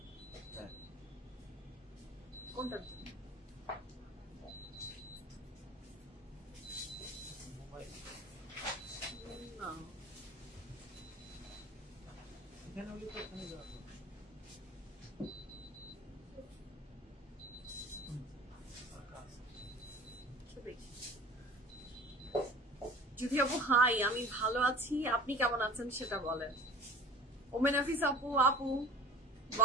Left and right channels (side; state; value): both; normal; correlation 0.44